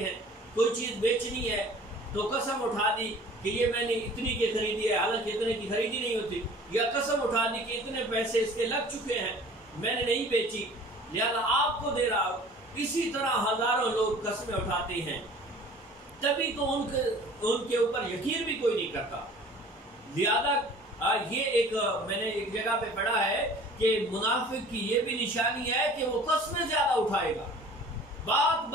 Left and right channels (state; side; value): normal; both; correlation 0.47